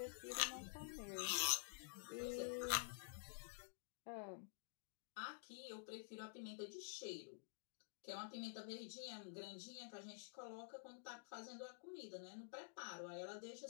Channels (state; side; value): silent; right; digital silence